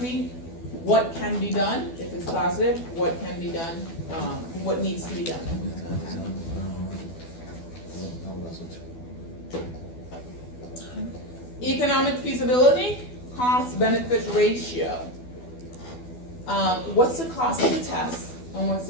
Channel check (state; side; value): late; right; 12 ms